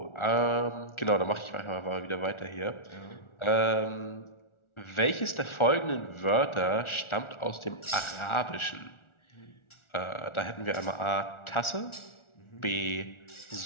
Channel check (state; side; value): late; right; 1.4 ms